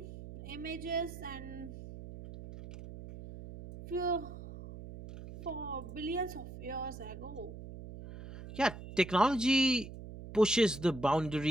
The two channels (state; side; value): noise; right; hum, 12 dB below the sound